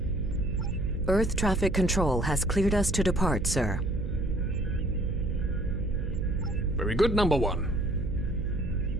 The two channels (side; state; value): right; noise; hum, 4 dB below the sound